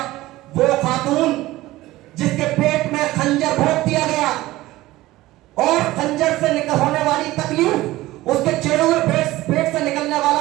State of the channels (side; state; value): left; quieter; 17.5 dB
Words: वो खातून जिसके पेट में खंजर भोंक दिया गया और खंजर से निकल होने वाली तकलीफ, उसके चेहरे में पेट से निकलने वाला